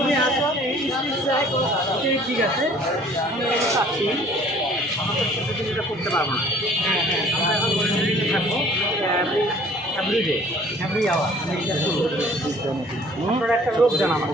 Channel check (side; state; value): both; normal; correlation 0.54